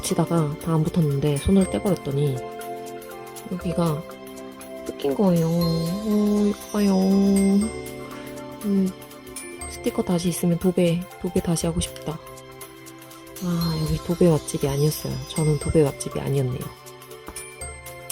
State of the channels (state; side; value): identical; both; correlation 1.00